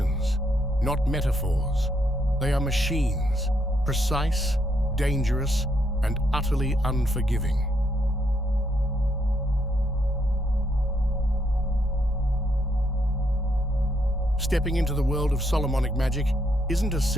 not metaphors. They are machines, precise, dangerous, and utterly unforgiving. Stepping into the world of Solomonic magic isn't as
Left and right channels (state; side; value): normal; both; correlation 0.75